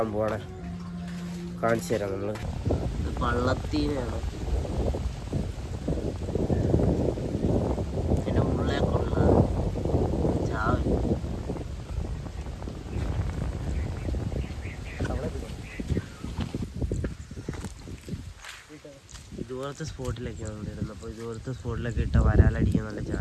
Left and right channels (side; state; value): both; identical; correlation 1.00